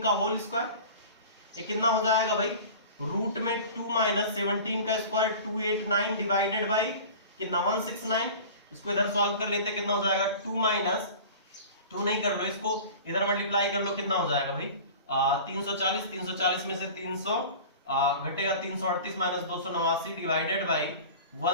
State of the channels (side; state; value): both; inverted; correlation -0.38